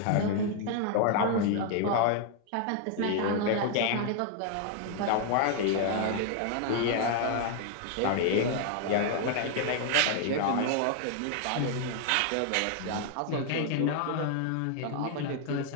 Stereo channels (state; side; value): different; both; correlation 0.00